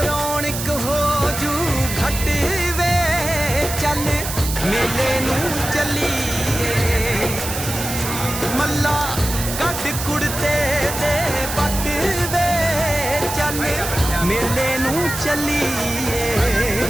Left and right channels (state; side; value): noise; right; hiss, 6 dB below the sound